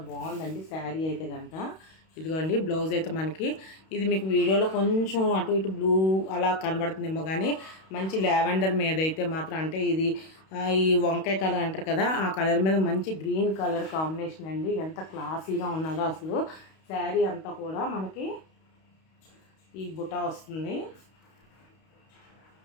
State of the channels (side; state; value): right; late; 31 ms